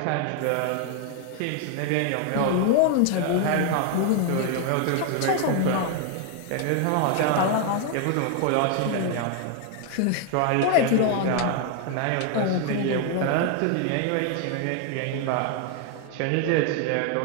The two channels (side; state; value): both; different; correlation 0.00